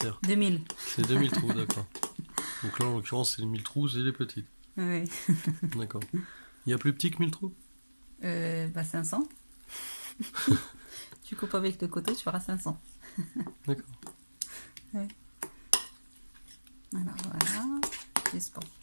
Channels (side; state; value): both; inverted; correlation -1.00